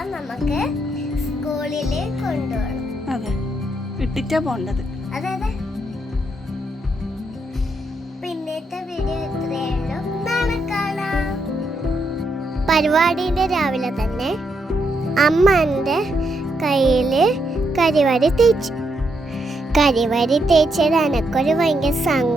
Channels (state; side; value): normal; both; correlation 0.79